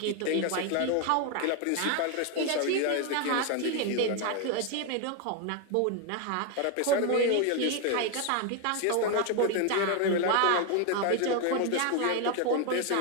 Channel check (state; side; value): different; both; correlation 0.01